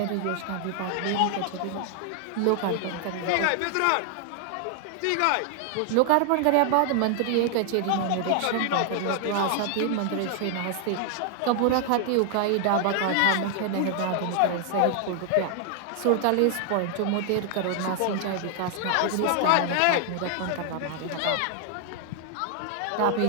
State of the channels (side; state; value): both; different; correlation 0.00